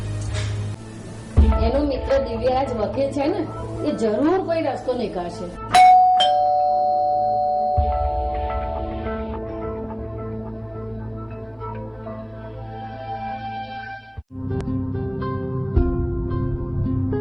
એનો મિત્ર દિવ્યરાજ વકીલ છે ને, એ જરૂર કોઈ રસ્તો નીકાળશે.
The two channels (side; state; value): both; identical; correlation 1.00